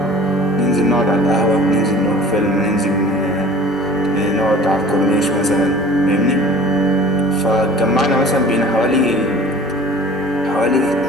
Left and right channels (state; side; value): normal; both; correlation 0.45